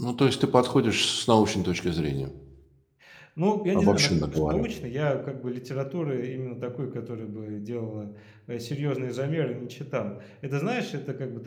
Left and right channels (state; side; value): identical; both; correlation 1.00